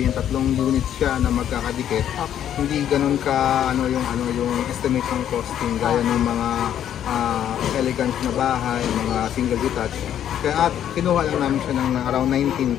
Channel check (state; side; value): quieter; right; 10.3 dB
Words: tatlong units siya na magkakadikit. Okay. Hindi ganun ka yung estimate ng costing gaya ng mga elegant na bahay, mga single detached. Kaya kinuha lang namin siya ng around